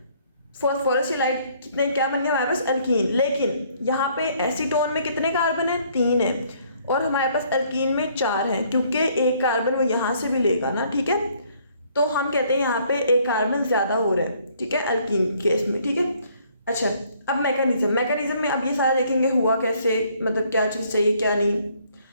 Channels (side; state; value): both; inverted; correlation -0.63